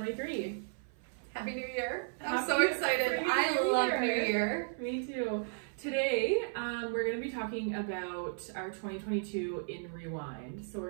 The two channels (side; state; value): left; silent; 55 dB below the other